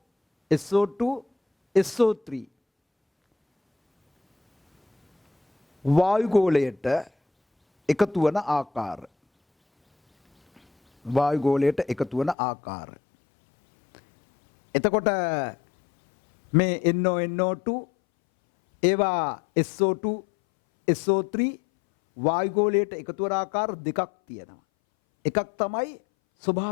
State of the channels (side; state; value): right; drops out; at 12.4 s